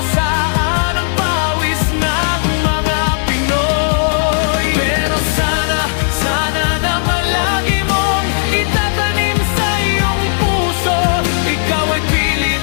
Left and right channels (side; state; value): right; silent; digital silence